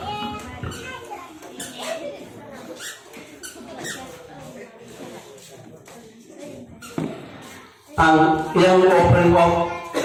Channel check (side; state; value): both; identical; correlation 1.00